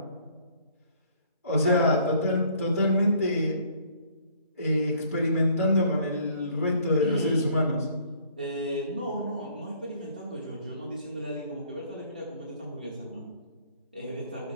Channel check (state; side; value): inverted; both; correlation -0.59